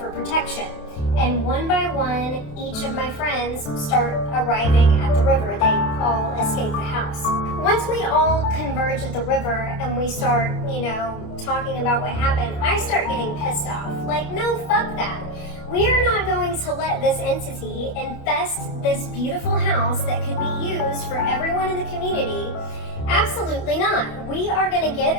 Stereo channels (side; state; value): right; late; 28 ms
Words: protection. And one by one, each of my friends start arriving at the river. They all escape the house. Once we all converge at the river and we start, talking about what happened, I start getting pissed off. Like, no, fuck that. We are not going to let this entity infest this beautiful house that could be used for everyone in the community. Absolutely not. We are going to get